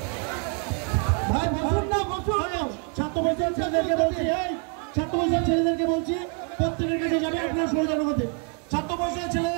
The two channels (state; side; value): quieter; left; 39.3 dB